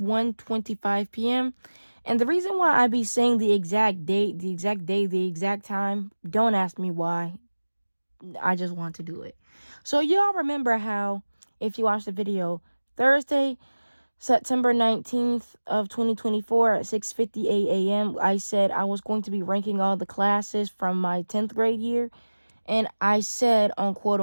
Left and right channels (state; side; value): inverted; both; correlation -1.00